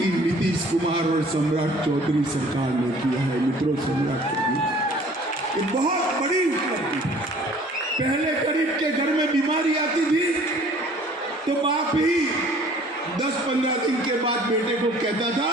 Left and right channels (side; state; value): both; normal; correlation 0.52